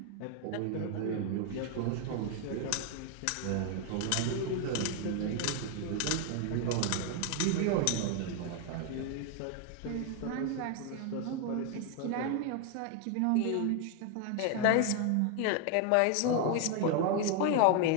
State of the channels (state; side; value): different; both; correlation 0.00